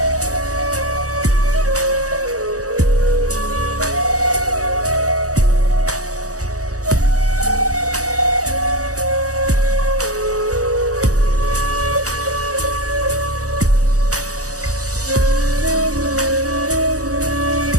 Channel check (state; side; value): late; left; 0.66 ms